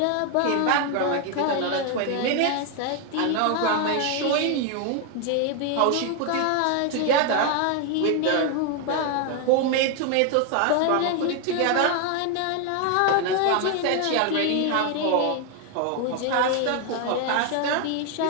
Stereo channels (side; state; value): both; different; correlation 0.01